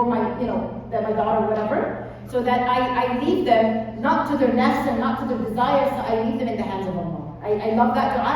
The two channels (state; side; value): identical; both; correlation 1.00